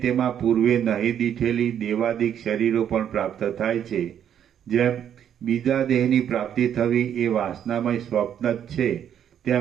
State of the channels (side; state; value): left; quieter; 9.4 dB